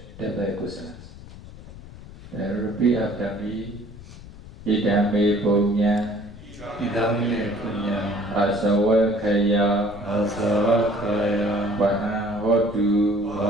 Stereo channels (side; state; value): left; noise; rumble, 16 dB below the sound